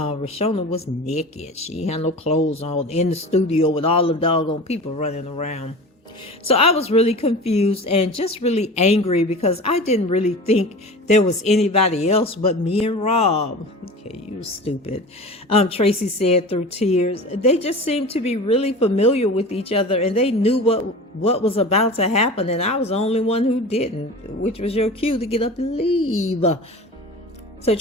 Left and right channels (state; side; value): normal; both; correlation 0.35